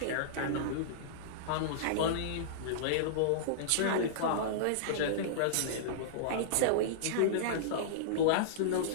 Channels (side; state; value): both; different; correlation -0.03